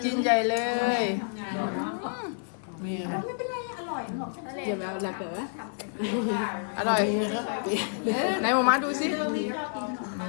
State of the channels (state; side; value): silent; right; 56 dB below the other